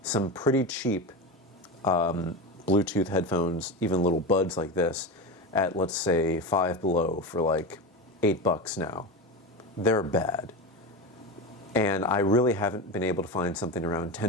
some pretty cheap Bluetooth headphones, even little buds like this, at, let's say, Five Below for like $8 now. They're bad. And I really haven't been able to find something around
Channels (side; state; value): both; normal; correlation 0.22